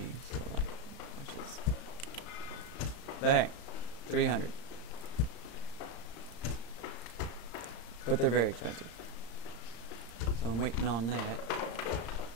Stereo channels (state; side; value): late; right; 35 ms